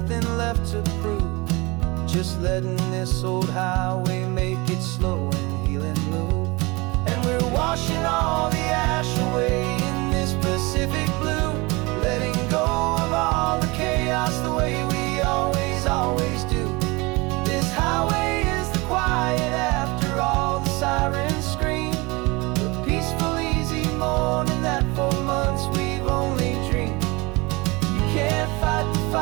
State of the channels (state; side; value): quieter; left; 24.9 dB